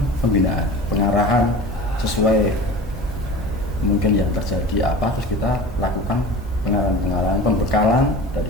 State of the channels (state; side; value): normal; both; correlation 0.36